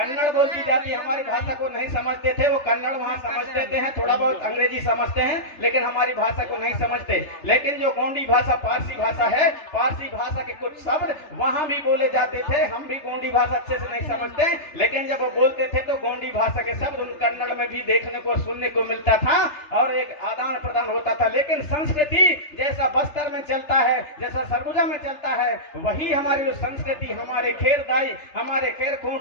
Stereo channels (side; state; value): right; late; 3.3 ms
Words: बोली जाती है। हमारी भाषा को नहीं समझते थे, वो कन्नड़ वहां समझते थे, थोड़ा बहुत अंग्रेजी समझते हैं, लेकिन हमारी भाषा को नहीं समझते। लेकिन जो गोंडी भाषा पारसी भाषा है, पारसी भाषा के कुछ शब्द वहां भी बोले जाते थे। हम भी गोंडी भाषा अच्छे से नहीं समझते, लेकिन जब वो बोलते थे तो गोंडी भाषा के शब्द उन कन्नड़ में भी देखने को सुनने को मिलता था और एक आदान प्रदान होता था। लेकिन संस्कृति जैसा बस्तर में चलता है, जैसा सरगुजा में चलता है, वही हमारी जो संस्कृति, हमारे खेर दाई, हमारे खेर खून